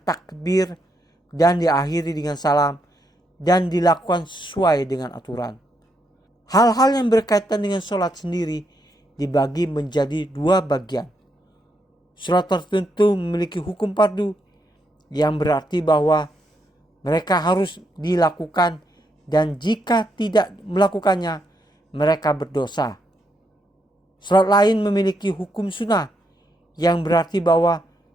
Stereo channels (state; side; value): normal; both; correlation 0.79